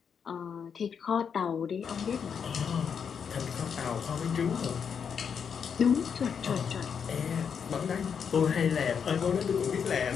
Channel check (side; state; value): right; quieter; 6.9 dB